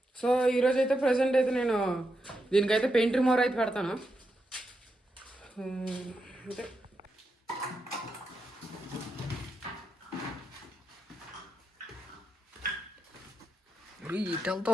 సో ఈరోజు అయితే ప్రజెంట్ అయితే నేను దీనికైతే పెయింట్ రిమూవర్ అయితే పెడతాను. అంటే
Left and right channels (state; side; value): normal; both; correlation 0.85